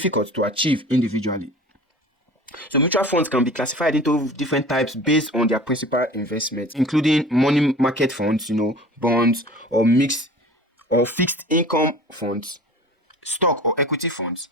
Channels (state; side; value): normal; both; correlation 0.41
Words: to achieve individually. So mutual funds can be classified into different types based on their principal investments, including money market funds, bonds, or mixed or fixed income funds, stock or equity funds,